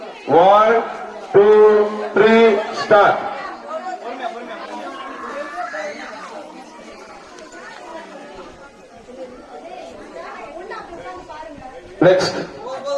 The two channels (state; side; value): identical; both; correlation 1.00